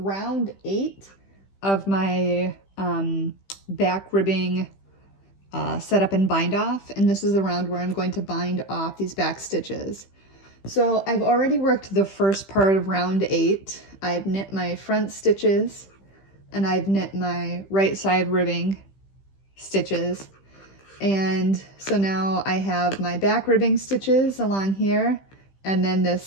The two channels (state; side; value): late; right; 15 ms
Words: 8 of my back ribbing setup and bind off, and this is the round where I'm going to bind off these back stitches. So I've already worked the first part of round 8. I've knit my front stitches, and I've knit my right side ribbing stitches. And so now I have my back ribbing stitches along here, and then